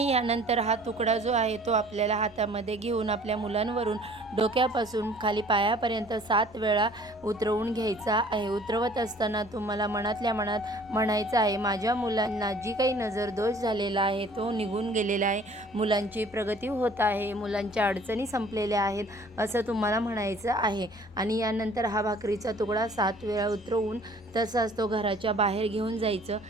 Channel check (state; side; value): normal; both; correlation 0.53